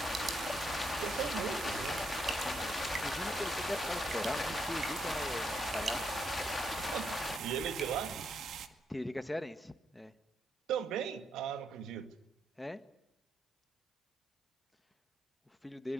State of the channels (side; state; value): both; normal; correlation 0.77